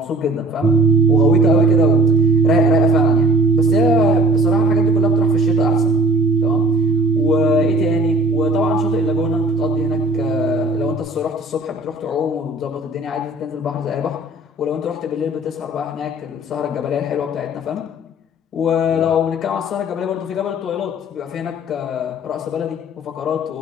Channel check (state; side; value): normal; both; correlation 0.49